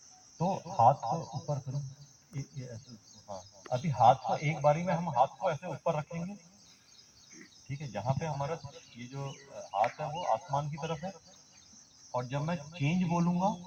तो हाथ को ऊपर करो, ये ऐसे। हाँ, अभी हाथ को एक बारी में हम हाथ को ऐसे ऊपर रखेंगे, ठीक है, जहाँ पे हमारा ये जो हाथ है वो आसमान की तरफ है। और जब मैं चेंज बोलूंगा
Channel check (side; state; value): both; identical; correlation 1.00